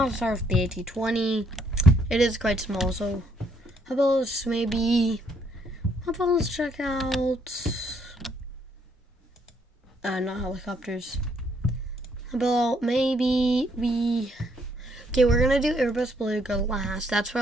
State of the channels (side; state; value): both; normal; correlation 0.70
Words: start with the AT-20. It is quite small, so how about let's check out, not helicopters. How about maybe okay, we're going to do Airbus Beluga last. That's